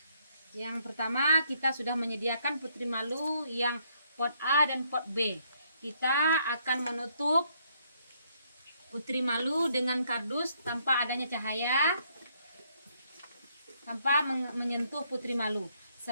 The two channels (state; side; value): inverted; both; correlation -0.70